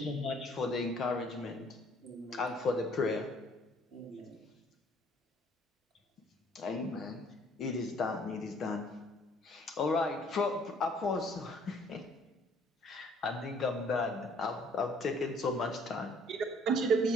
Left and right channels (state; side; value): normal; both; correlation 0.59